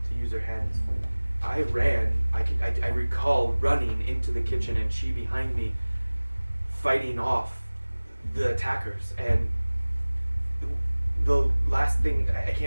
to use her hands. I ran. I recall running into the kitchen and she behind me, fighting off the attackers. And the last thing, I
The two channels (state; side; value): inverted; both; correlation -1.00